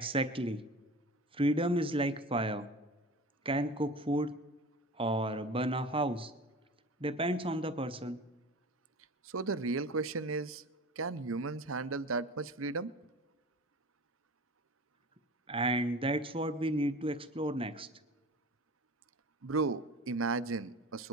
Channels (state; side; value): normal; both; correlation 0.36